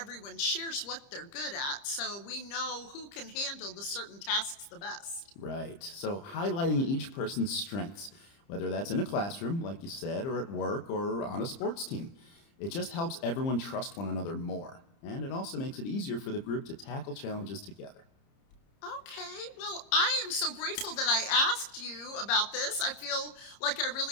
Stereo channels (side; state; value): right; late; 30 ms